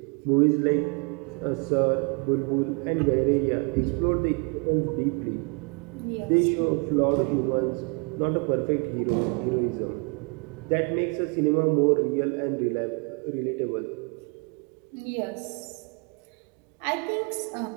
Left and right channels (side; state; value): left; quieter; 33.0 dB